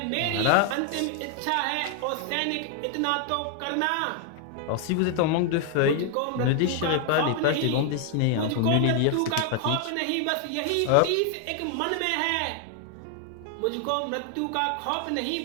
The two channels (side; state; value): both; different; correlation 0.00